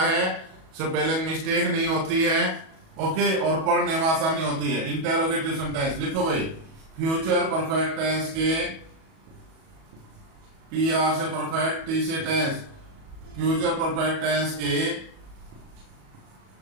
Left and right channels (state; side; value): late; left; 37 ms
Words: है, स्पेलिंग मिस्टेक नहीं होती है, ओके, और पढ़ने में आसानी होती है। इंटेरोगेटिव सेंटेंस लिखो भाई, फ्यूचर परफेक्ट टेंस के PR से परफेक्ट, T से टेंस, फ्यूचर परफेक्ट टेंस के